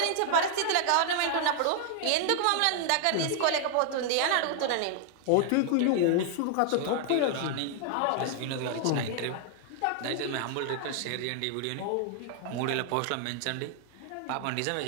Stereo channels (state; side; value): different; both; correlation 0.00